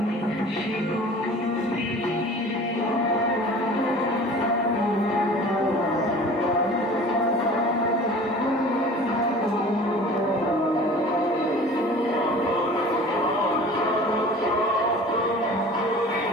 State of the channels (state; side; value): normal; both; correlation 0.43